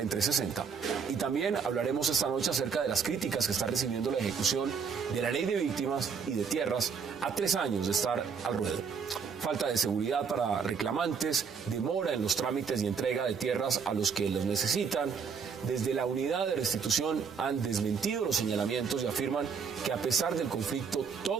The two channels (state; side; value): quieter; left; 6.1 dB